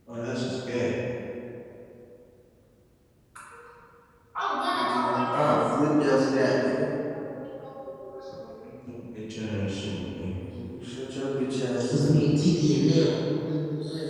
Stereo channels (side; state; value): both; identical; correlation 1.00